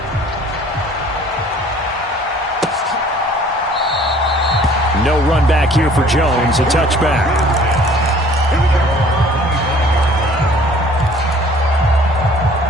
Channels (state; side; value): normal; both; correlation 0.53